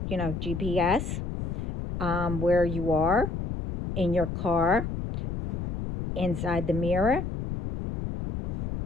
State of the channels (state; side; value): noise; left; rumble, 4 dB below the sound